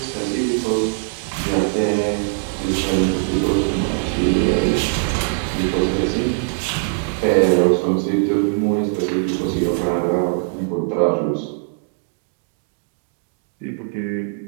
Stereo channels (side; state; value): left; silent; digital silence